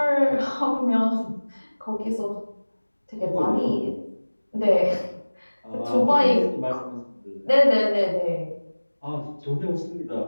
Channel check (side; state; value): both; inverted; correlation -1.00